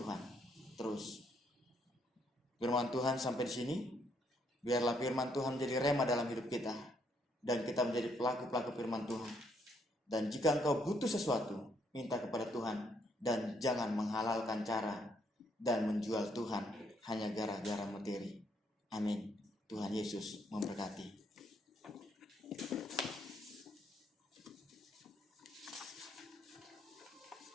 terus. Firman Tuhan sampai di sini. Biarlah firman Tuhan menjadi rema dalam hidup kita dan kita menjadi pelaku-pelaku firman Tuhan. Dan jika engkau butuh sesuatu, minta kepada Tuhan dan jangan menghalalkan cara dan menjual Tuhan hanya gara-gara materi. Amin. Tuhan Yesus memberkati.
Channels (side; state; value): both; normal; correlation 0.72